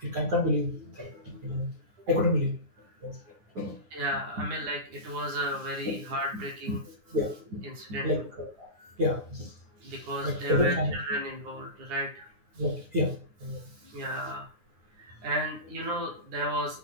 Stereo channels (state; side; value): late; left; 9.7 ms